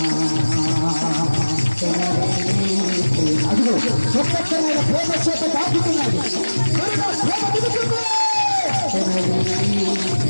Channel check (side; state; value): both; inverted; correlation -1.00